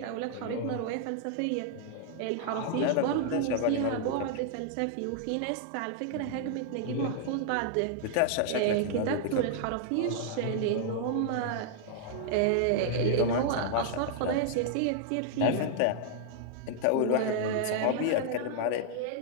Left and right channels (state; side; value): different; both; correlation -0.01